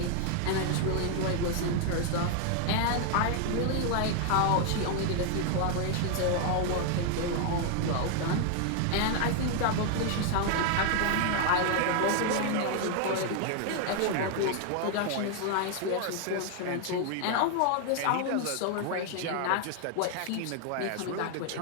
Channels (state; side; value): different; both; correlation 0.00